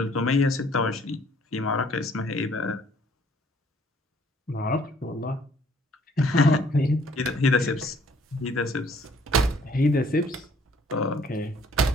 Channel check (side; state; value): both; normal; correlation 0.60